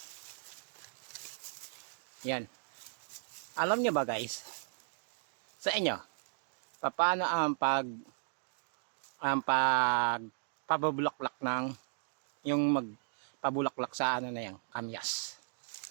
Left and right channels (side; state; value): left; silent; digital silence